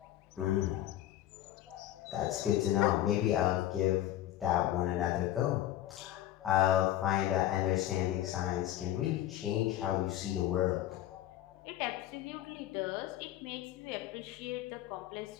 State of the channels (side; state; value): right; quieter; 13.1 dB